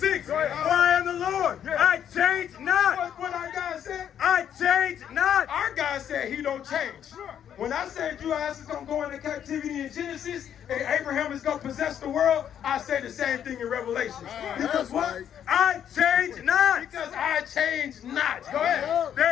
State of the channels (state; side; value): quieter; right; 9.4 dB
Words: For I am the Lord. I change not. What our God said? I change not. Our God said he don't change. When I said you ass is going to go into captivity in Genesis and Abraham is going to possess the world, I said the same thing in Revelation. Because what? I change not. Because I change not. Go ahead.